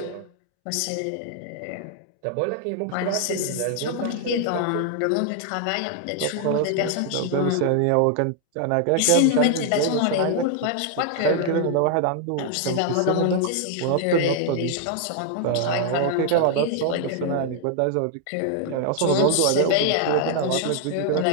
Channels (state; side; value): different; both; correlation 0.00